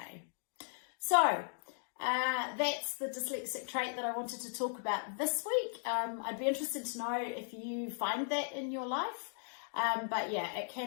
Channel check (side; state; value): right; silent; digital silence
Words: So that's the dyslexic trait that I wanted to talk about this week. I'd be interested to know if you find that in your life. But yeah, it